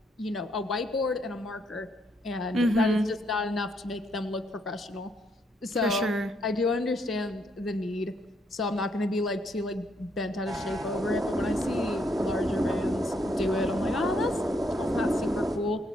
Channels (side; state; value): both; normal; correlation 0.73